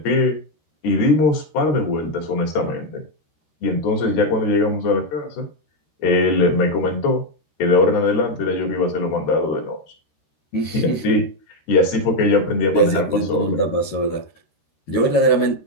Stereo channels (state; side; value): late; right; 13 ms